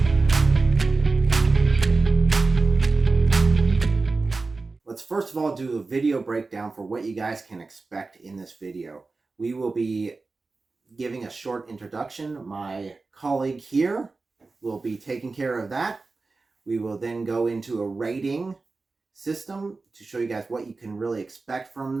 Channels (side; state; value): left; quieter; 3.8 dB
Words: Let's first of all do a video breakdown for what you guys can expect in this video. We will be giving a short introduction. My colleague here will be taking care of that. We will then go into a rating system to show you guys what you can really expect from